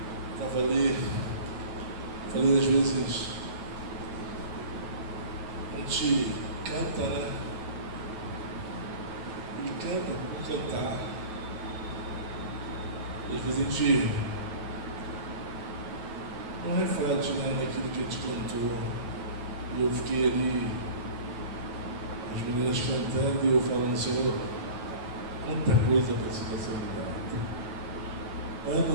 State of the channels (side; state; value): left; late; 9.3 ms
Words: Estava ali, falei às vezes, a gente canta, né? E canta por cantar. Às vezes a gente não reflete, né, naquilo que a gente cantou. E eu fiquei ali, as meninas cantando e eu falando, Senhor, quanta coisa precisa ser mudada.